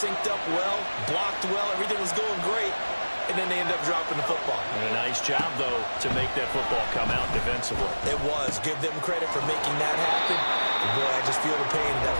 up well, blocked well, everything was going great. And then they end up dropping the football. And a nice job, though, to make that football come out defensively. It was. Give them credit for making that happen. And boy, I just feel the pain of that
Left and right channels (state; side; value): inverted; both; correlation -1.00